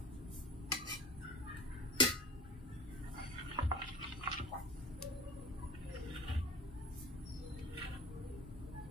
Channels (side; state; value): both; normal; correlation 0.36